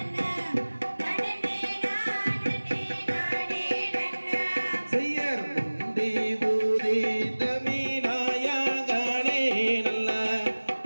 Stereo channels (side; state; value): both; inverted; correlation -1.00